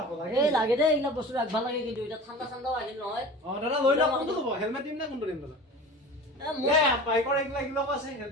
লাগে এই লাগে দে এইবিলাক বস্তু ৰাখবা লাগে কিন্তু এটা ঠাণ্ডা ঠাণ্ডাও আহিল নহয় দাদা লৈ লওক কোনটো ল'ব হেলমেট দিম নে কোনটো দিম দাদা বাইকৰ এইবিলাক আছে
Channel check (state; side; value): normal; both; correlation 0.37